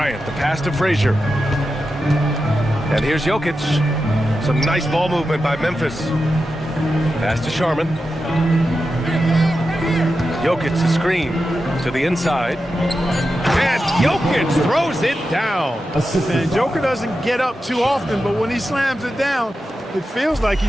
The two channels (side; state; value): both; normal; correlation 0.90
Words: the pass to Frazier. And here's Jokic. Some nice ball movement by Memphis. Pass to Sharman. Jokic to screen to the inside. And Jokic throws it down. And Joker doesn't get up too often, but when he slams it down, it feels like